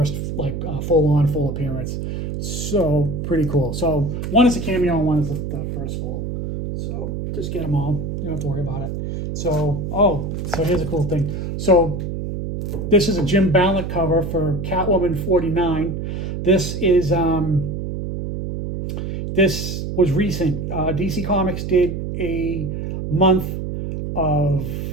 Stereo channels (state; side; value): noise; right; hum, 4 dB below the sound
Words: like full appearance. So pretty cool. So one is a cameo and one is the first full. So just get them all. You don't have to worry about it. So so here's a cool thing. So this is a Jim Ballant cover for Catwoman 49. This is this was recent. DC Comics did a month of